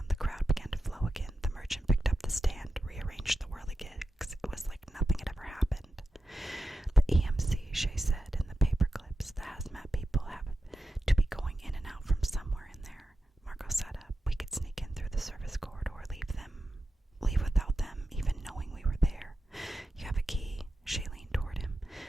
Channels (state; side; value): normal; both; correlation 0.91